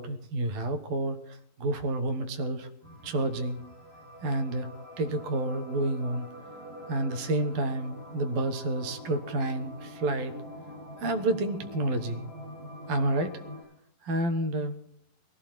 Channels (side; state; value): left; late; 11 ms